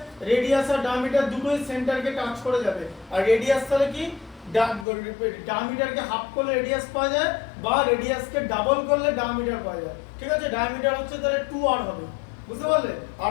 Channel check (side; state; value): right; drops out; at 4.9 s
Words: রেডিয়াস আর ডায়ামিটার দুটোই সেন্টারকে টাচ করে যাবে। আর রেডিয়াস তাহলে কি? ডায়ামিটারকে হাফ করলে রেডিয়াস পাওয়া যায়, বা রেডিয়াসকে ডাবল করলে ডায়ামিটার পাওয়া যায়, ঠিক আছে? ডায়ামিটার হচ্ছে তাহলে 2r হবে, বুঝতে পারলে?